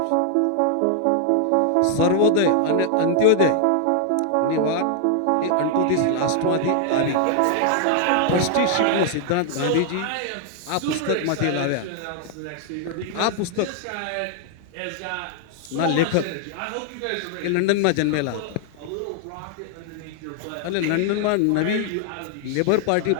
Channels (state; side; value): different; both; correlation 0.00